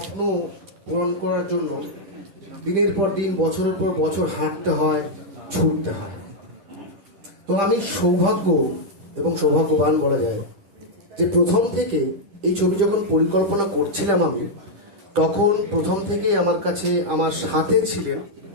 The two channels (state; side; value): late; left; 10 ms